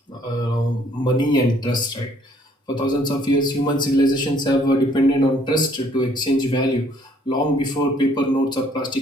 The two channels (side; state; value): both; normal; correlation 0.62